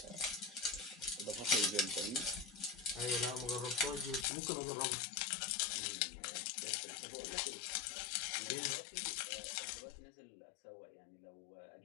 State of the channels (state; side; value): drops out; right; at 4.2 s